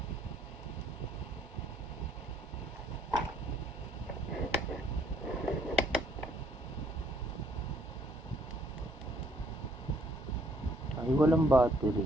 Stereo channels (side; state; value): both; normal; correlation 0.66